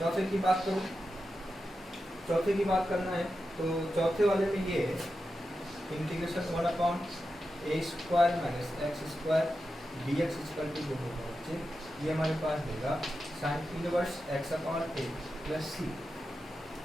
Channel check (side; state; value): both; normal; correlation 0.90